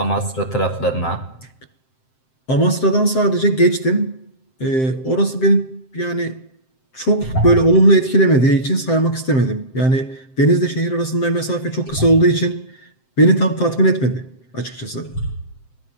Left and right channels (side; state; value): right; late; 7.7 ms